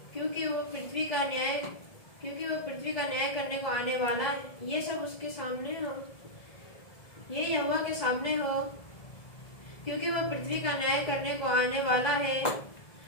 क्योंकि वह पृथ्वी का न्याय करने को आने वाला है। ये सब उसके सामने हो, ये यहोवा के सामने हो, क्योंकि वह पृथ्वी का न्याय करने को आने वाला है।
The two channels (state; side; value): late; right; 1.7 ms